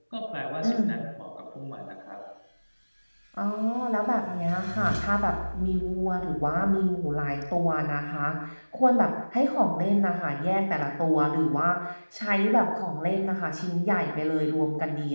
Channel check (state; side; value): inverted; both; correlation -1.00